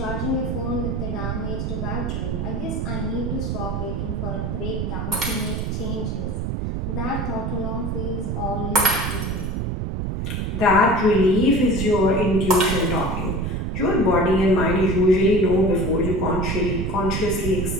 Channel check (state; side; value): noise; right; rumble, 2 dB below the sound